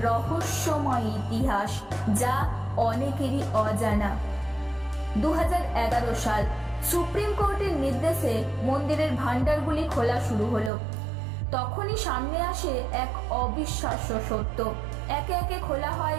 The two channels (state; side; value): drops out; left; at 10.7 s